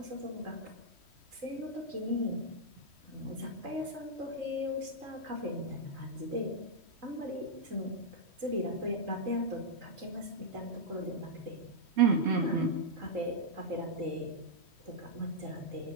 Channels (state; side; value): late; left; 3.1 ms